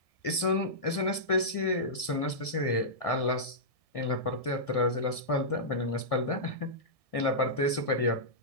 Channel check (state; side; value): late; right; 1.6 ms